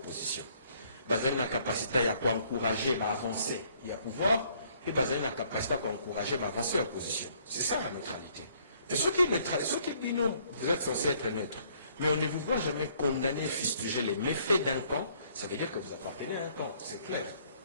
On a la capacité à encourager à avancer, il y a pouvoir, et on a la capacité à encourager à avancer en opposition. C'est ça la neutralité. Et ceux qui disent non, vous êtes censés être neutre, mais on ne vous voit jamais condamner, fustiger les méfaits d'un camp, ça veut dire que vous appartenez à un camp, c'est clair.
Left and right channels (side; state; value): both; inverted; correlation -0.64